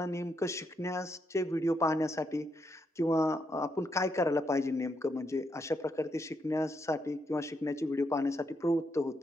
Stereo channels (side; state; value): both; normal; correlation 0.79